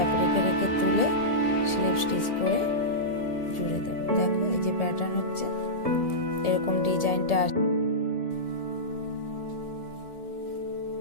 রেখে রেখে তুলে স্লিপ স্টিচ করে জুড়ে দেব। দেখো এই যে প্যাটার্ন হচ্ছে, এরকম ডিজাইনটা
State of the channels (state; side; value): late; right; 1.7 ms